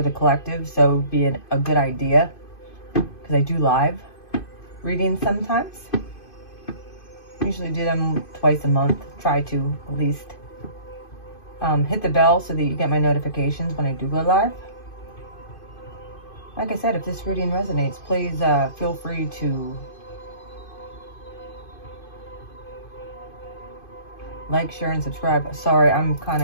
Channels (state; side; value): late; right; 2.5 ms